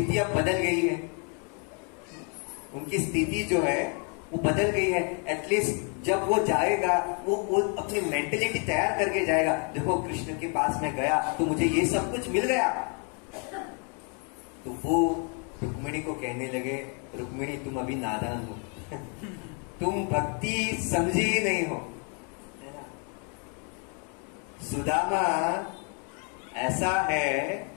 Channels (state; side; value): quieter; right; 38.3 dB